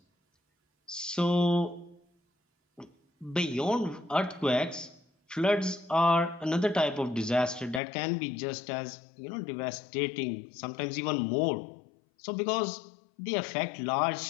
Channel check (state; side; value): drops out; right; at 7.8 s